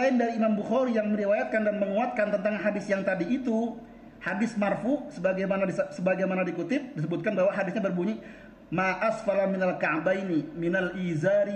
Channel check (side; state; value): both; identical; correlation 1.00